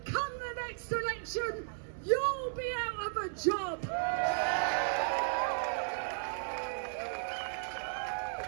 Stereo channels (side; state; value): left; silent; 55 dB below the other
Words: come the next election, you'll be out of a job.